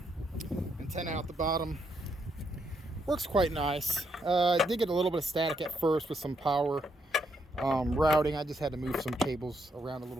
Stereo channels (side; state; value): both; normal; correlation 0.77